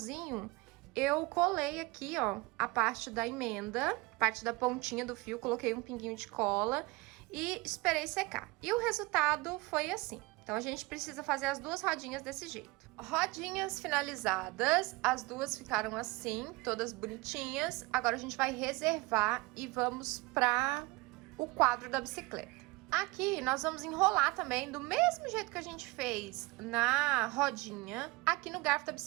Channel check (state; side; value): quieter; left; 23.5 dB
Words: eu colei aqui, ó, a parte da emenda, parte da pontinha do fio, coloquei um pinguinho de cola e esperei secar. E o resultado foi assim. Então, a gente precisa fazer as duas rodinhas desse jeito. Rodinhas finalizadas, as duas ficaram assim, todas bonitinhas. Agora, a gente vai reservar e vamos para o quadro da bicicleta. Aqui, nós vamos enrolar também do mesmo jeito que a gente fez na rodinha, aqui no garfo da